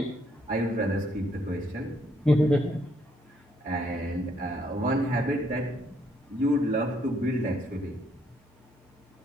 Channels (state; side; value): normal; both; correlation 0.70